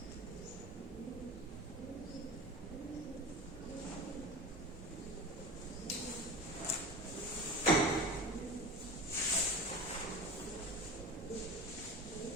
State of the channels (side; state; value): both; normal; correlation 0.32